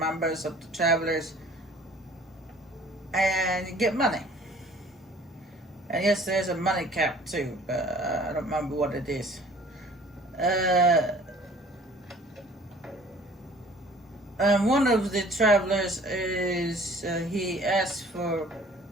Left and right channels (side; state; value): both; normal; correlation 0.52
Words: of the Travelers, and you get money. And yes, there's a money cap too, but I don't remember what it is. One of the Travelers is he asked for